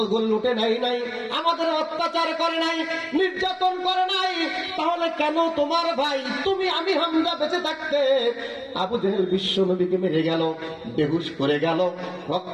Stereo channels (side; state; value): both; identical; correlation 1.00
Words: লুটে নেয় নাই, আমাদের অত্যাচার করে নাই, নির্যাতন করে নাই। তাহলে কেন তোমার ভাই তুমি আমির হামজা বেঁচে থাকতে আবু জেহেল বিশ্ব নবীকে মেরে গেল, বেহুশ করে গেল,